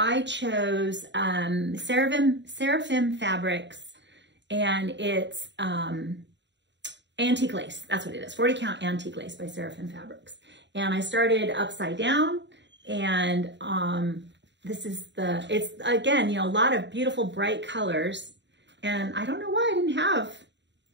chose Seraphim Fabrics, and it's antique lace. That's what it is, 40 count antique lace by Seraphim Fabrics. And I started upside down, and this is it's again, you know, a lot of beautiful bright colors. And I don't know why I didn't have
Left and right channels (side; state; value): left; late; 0.52 ms